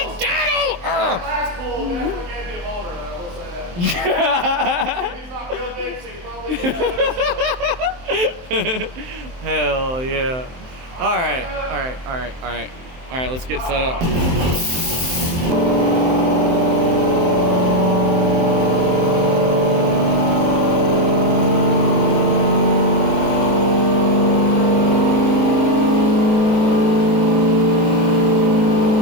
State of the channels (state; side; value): late; left; 23 ms